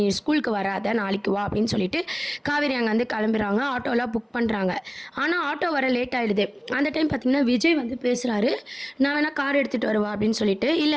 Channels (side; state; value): both; identical; correlation 1.00